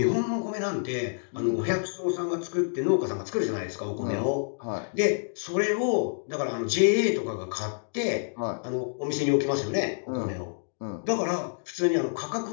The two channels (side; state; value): right; silent; digital silence